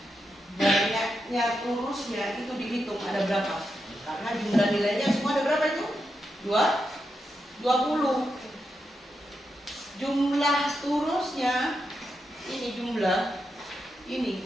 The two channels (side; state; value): both; normal; correlation 0.86